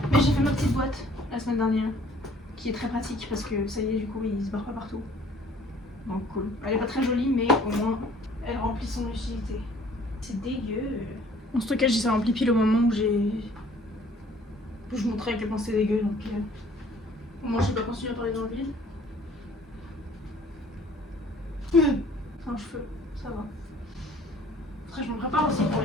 Mais j'ai fait ma petite boîte la semaine dernière qui est très pratique parce que ça y est, du coup il se barre pas partout. Donc cool. Elle est pas très jolie mais au moins elle remplit son utilité. C'est dégueu. Mon stockage il s'est rempli pile au moment où je montrais à quel point c'était dégueu donc au moins je vais pas continuer à parler dans le vide. C'est un cheveu, ça va. Après je me prépare aussi pour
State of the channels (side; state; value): both; normal; correlation 0.55